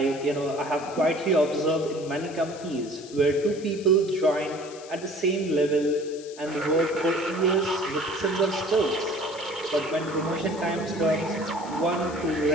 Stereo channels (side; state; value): left; noise; hiss, 18 dB below the sound